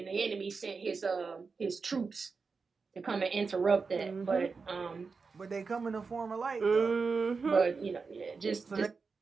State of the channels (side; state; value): left; quieter; 4.7 dB